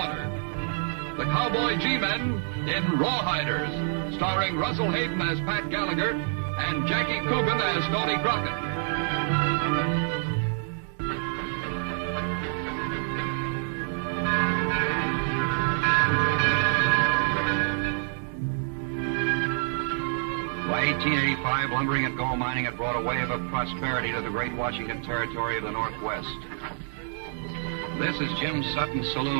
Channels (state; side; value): silent; left; digital silence